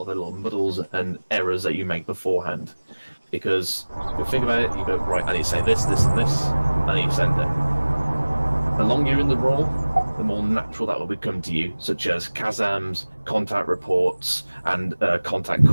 of the little muddles and errors that you make beforehand. Because you think about it, you go, right, I need to say this, this, and this, I need to send it. The longer you're in the role, the more natural that will become to you, such as Kazams, contact reports, and contact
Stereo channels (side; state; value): both; inverted; correlation -1.00